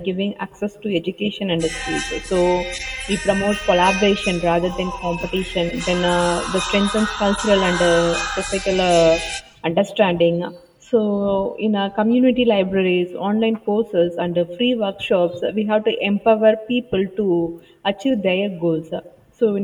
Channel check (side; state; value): both; identical; correlation 1.00